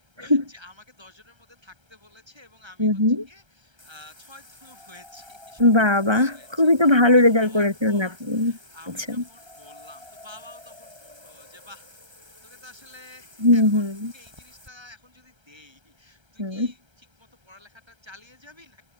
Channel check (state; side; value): late; left; 1.3 ms